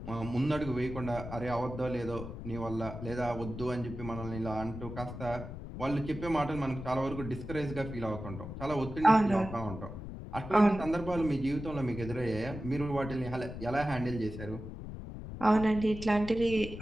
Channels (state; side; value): noise; left; rumble, 9 dB below the sound